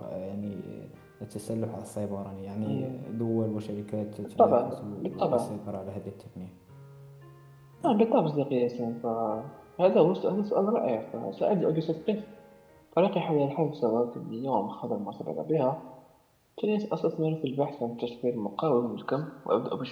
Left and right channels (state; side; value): identical; both; correlation 1.00